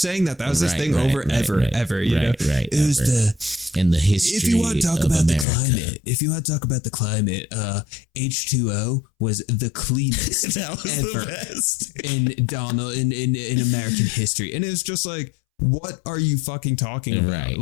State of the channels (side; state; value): right; drops out; at 5.5 s